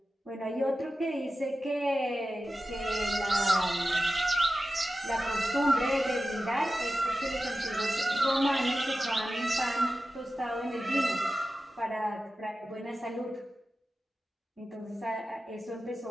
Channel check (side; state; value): both; normal; correlation 0.93